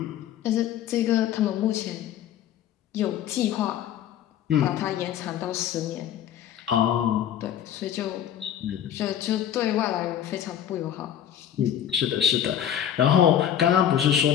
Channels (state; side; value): quieter; right; 10.2 dB